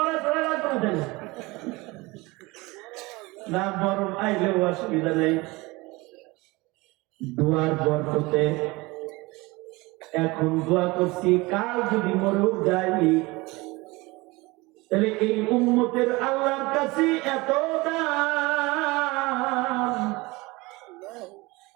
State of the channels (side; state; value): left; quieter; 23.0 dB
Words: চলে লাগবে না, না বরং আইলেও অসুবিধা নেই। দোয়ার বরকতে এখন দোয়া করছি, কাল যদি মরেও যাই তাহলে এই উম্মতের আল্লাহর কাছে এত দাম।